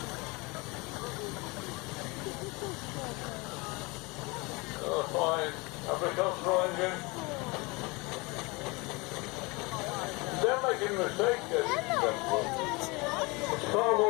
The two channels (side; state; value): right; quieter; 26.0 dB